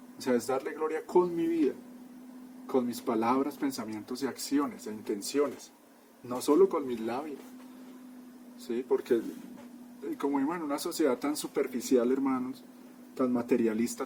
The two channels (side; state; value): both; identical; correlation 1.00